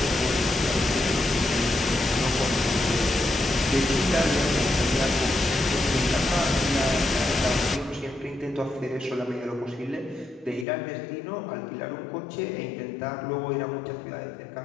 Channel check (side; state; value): right; drops out; at 10.7 s